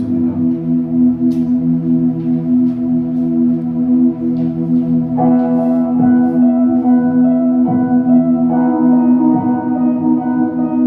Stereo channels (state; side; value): identical; both; correlation 1.00